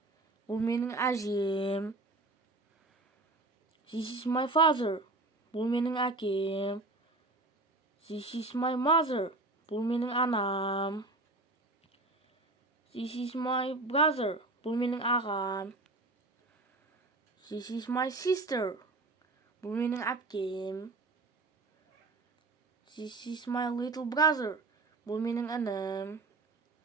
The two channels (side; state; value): left; quieter; 3.1 dB